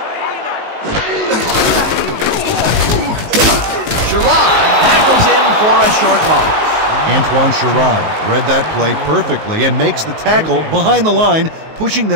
Sherrod tackles him for a short loss. Antoine Sherrod read that play perfectly and makes the tackle behind the line, pushing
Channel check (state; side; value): late; left; 19 ms